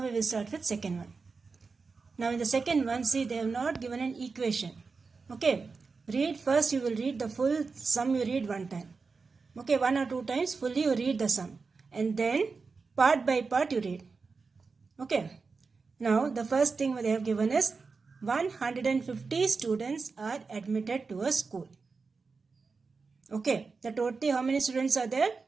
we will start with second one. Now in the second one, see they have not given an equation. Okay. Read first, you will read the full sum, you read one time. Okay, one or two times fully you read the sum. And then part by part you read. Okay. Now the first thing they have given is 150 students are admitted to a school. Okay, the total how many students are there?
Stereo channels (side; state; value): left; quieter; 4.6 dB